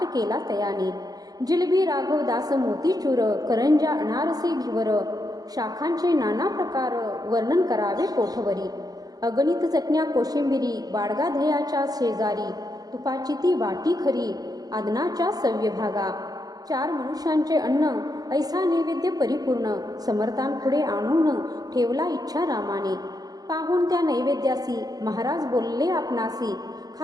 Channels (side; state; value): left; late; 0.18 ms